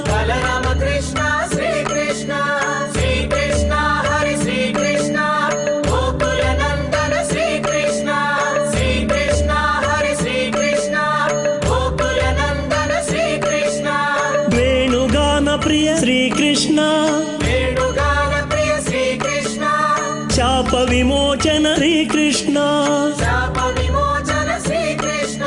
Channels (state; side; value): identical; both; correlation 1.00